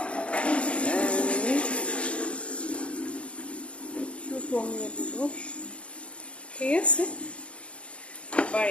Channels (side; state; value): right; late; 0.060 ms